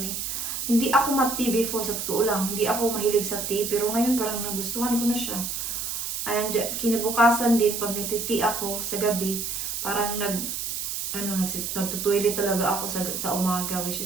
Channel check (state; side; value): noise; right; hiss, 3 dB below the sound